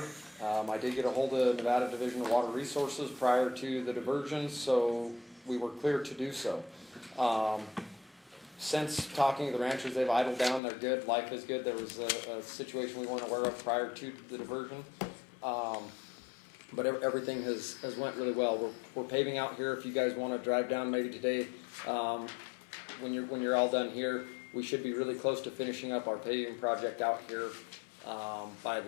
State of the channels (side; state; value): right; drops out; at 10.6 s